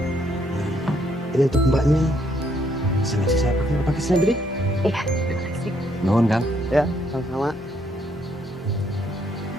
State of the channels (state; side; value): normal; both; correlation 0.71